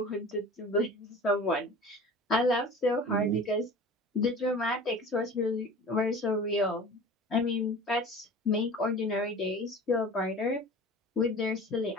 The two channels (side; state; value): both; normal; correlation 0.39